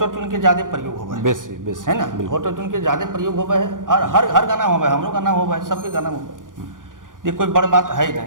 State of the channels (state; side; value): late; left; 0.89 ms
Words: ट्यून के ज़्यादा प्रयोग होवे है, बेसी बेसी है ना, ऑटो ट्यून के ज़्यादा प्रयोग होवे है, और हर गाना होवे, हमरो गाना होवे है, सबके गाना होवे है, ये कोई बड़ बात है ही